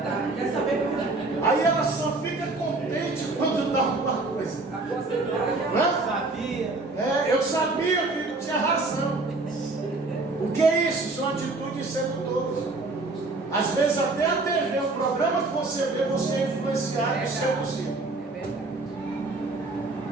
Aí ela só fica contente quando dá alguma coisa. Eu sabia que tinha razão. O que é isso? São atitudes sedutoras. Às vezes até a TV, o programa que você vê, você é influenciado e seduzido.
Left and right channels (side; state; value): left; quieter; 3.3 dB